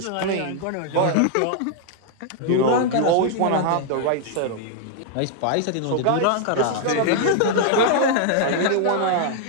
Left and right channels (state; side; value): different; both; correlation 0.00